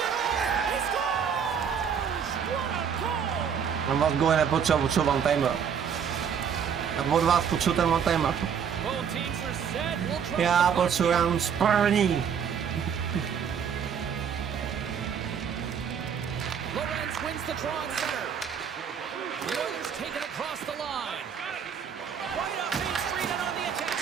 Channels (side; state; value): left; quieter; 7.5 dB